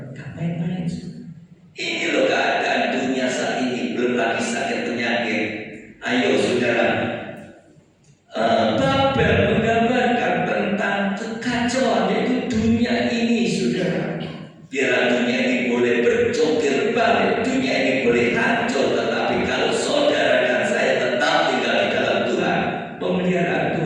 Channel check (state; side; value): identical; both; correlation 1.00